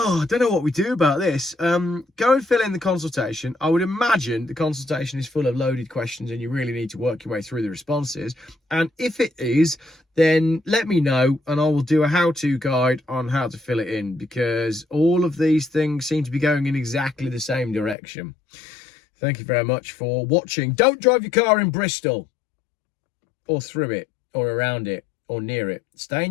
I don't know what we do about this. Go and fill in the consultation. I would imagine the consultation is full of loaded questions and you really need to work your way through the responses. And if it is, then let me know and I will do a how-to guide on how to fill it in, because all of these things seem to be going in exactly the same direction. Thank you very much for watching. Don't drive your car in Bristol or through it or around it or near it. Stay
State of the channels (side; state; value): right; drops out; at 17.9 s